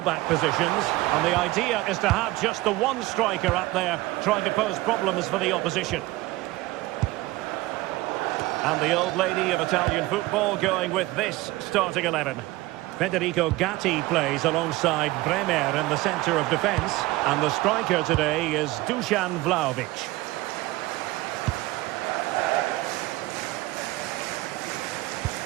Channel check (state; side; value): quieter; left; 19.2 dB